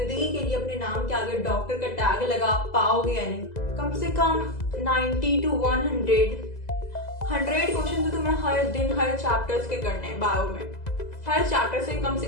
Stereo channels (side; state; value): right; late; 2.0 ms